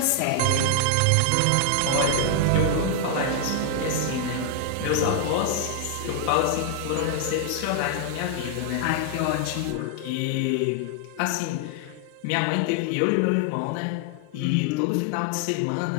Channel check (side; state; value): both; different; correlation 0.00